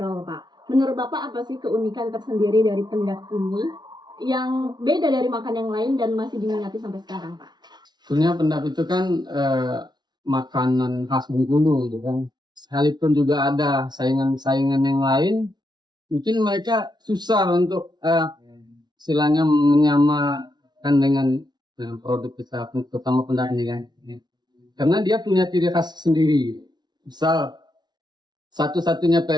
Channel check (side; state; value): left; late; 0.20 ms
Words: Pak. Menurut Bapak apa sih keunikan tersendiri dari pendap ini yang beda dari makan yang lain dan masih diminati sampai sekarang Pak? Sebenarnya pendap itu kan makanan khas Bengkulu gitu kan. Sekalipun juga ada saingan-saingan yang lain, mungkin mereka susah untuk istilahnya menyamakan dengan produk kita, terutama pendap ini kan. Karena dia punya ciri khas sendiri. Misal satu-satunya